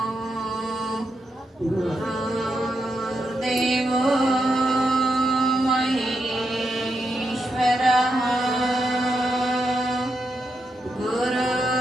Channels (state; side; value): normal; both; correlation 0.84